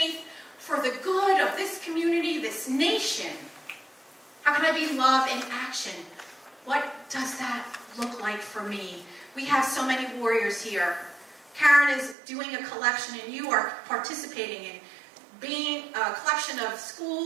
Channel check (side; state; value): left; drops out; at 12.2 s